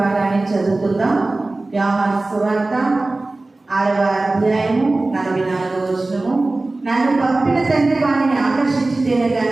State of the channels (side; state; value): left; quieter; 3.1 dB